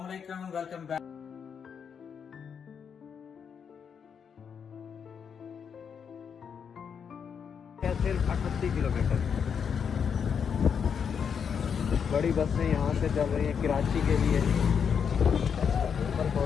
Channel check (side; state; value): right; quieter; 7.0 dB